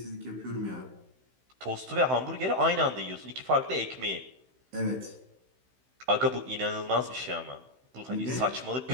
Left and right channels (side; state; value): left; late; 16 ms